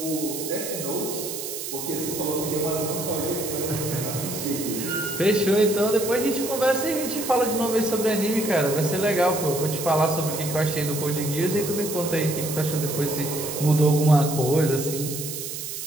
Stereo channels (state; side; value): noise; right; hiss, 7 dB below the sound